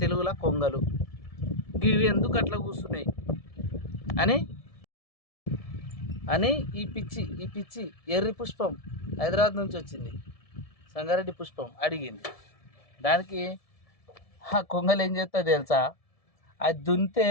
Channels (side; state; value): right; late; 1.7 ms